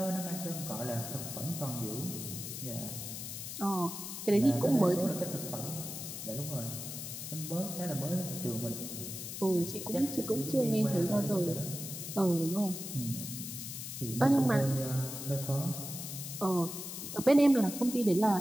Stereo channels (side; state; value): left; noise; hiss, 7 dB below the sound